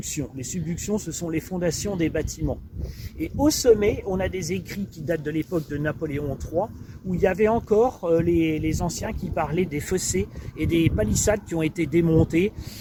Les subductions, ce sont les fondations des bâtiments. Et au sommet, on a des écrits qui datent de l'époque de Napoléon III, où il y avait encore les anciens qui parlaient des fossés et des palissades qui ont été démontées,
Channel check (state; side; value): identical; both; correlation 1.00